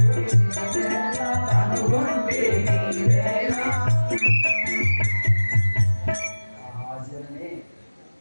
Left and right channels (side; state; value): both; inverted; correlation -1.00